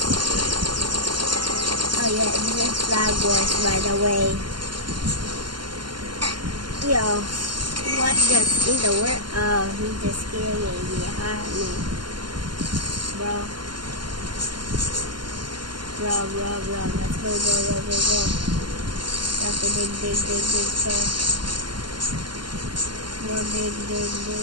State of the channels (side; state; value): left; late; 0.72 ms